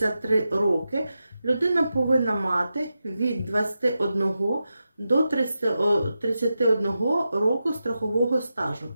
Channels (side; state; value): both; inverted; correlation -0.90